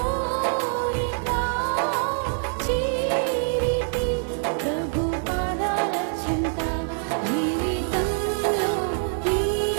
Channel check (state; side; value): silent; left; 62 dB below the other